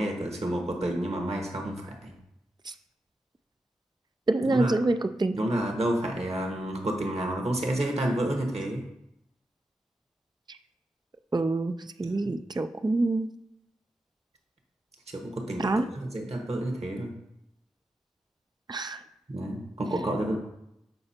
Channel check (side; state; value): both; normal; correlation 0.88